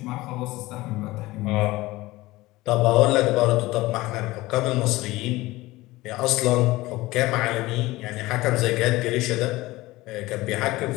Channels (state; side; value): quieter; right; 19.2 dB